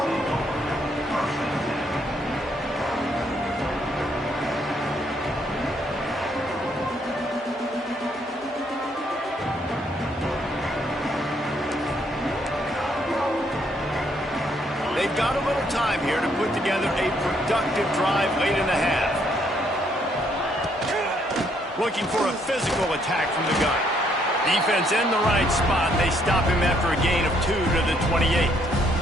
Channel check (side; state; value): both; normal; correlation 0.70